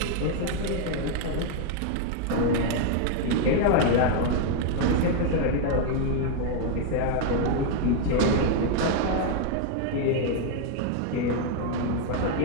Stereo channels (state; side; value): different; both; correlation 0.00